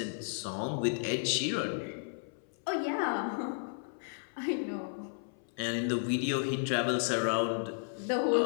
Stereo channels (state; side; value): silent; right; 55 dB below the other